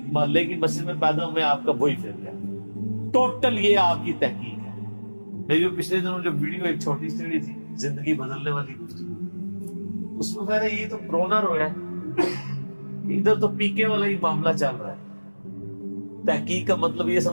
محلے کی مسجد میں پیدا ہوئے آپ کا وہی فرقہ ہے، ٹوٹل یہ آپ کی تحقیق ہے۔ میری جو پچھلے دنوں جو ویڈیو ایک چھوٹی سی تھی زندگی بدلنے والی، اس میں میں نے یہ تو رونا رویا ہے، ادھر تو پیکے والا ہی معاملہ چل رہا ہے۔ تحقیق کا مطلب یہ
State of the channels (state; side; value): inverted; both; correlation -1.00